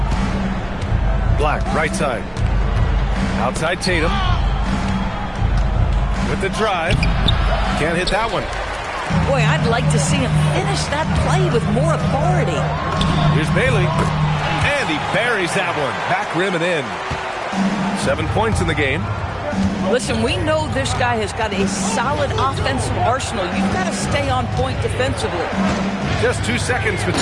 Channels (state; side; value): identical; both; correlation 1.00